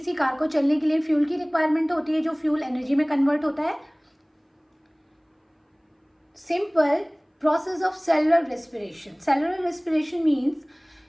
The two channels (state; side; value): identical; both; correlation 1.00